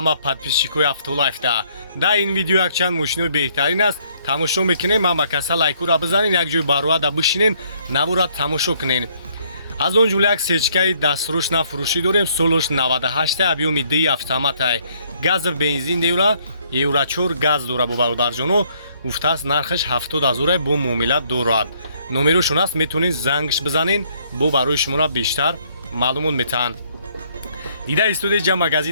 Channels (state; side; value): inverted; both; correlation -0.66